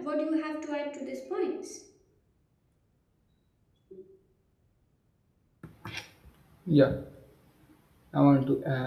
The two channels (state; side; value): identical; both; correlation 1.00